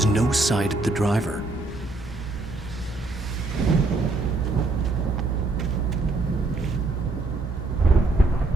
no sight of the driver.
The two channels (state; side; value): quieter; left; 3.2 dB